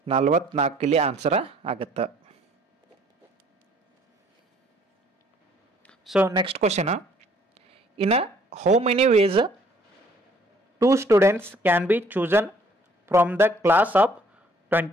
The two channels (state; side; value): normal; both; correlation 0.60